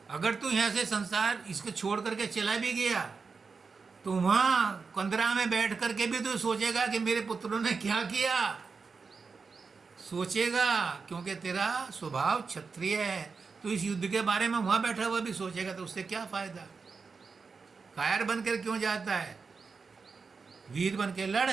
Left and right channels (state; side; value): quieter; left; 4.9 dB